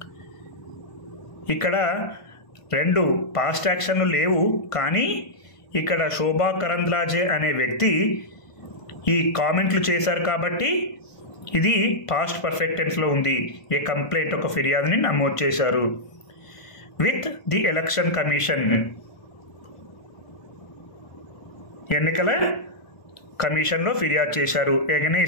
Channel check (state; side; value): late; right; 1.5 ms